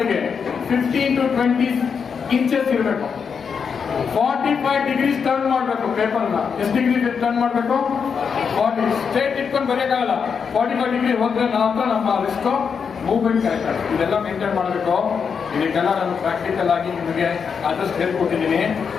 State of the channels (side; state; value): right; quieter; 6.3 dB